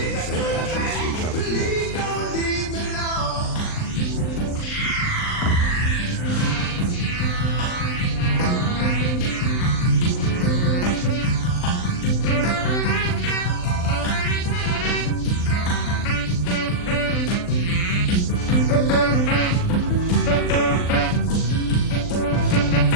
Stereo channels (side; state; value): right; late; 39 ms